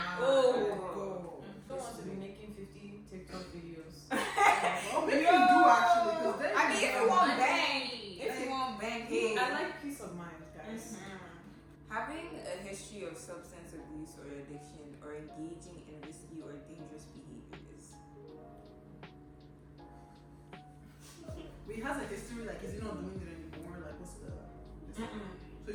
Oh. Don't want to be making 50 TikTok videos. Well, maybe you do actually, because then I mean, if you want bang, if you want bang, hey. I like peace of mind, guys. Having a history of substance abuse or addiction, or engaging in risky or dangerous behaviors. He has a history, like, is he not doing it anymore? Like, what's the. So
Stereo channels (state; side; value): identical; both; correlation 1.00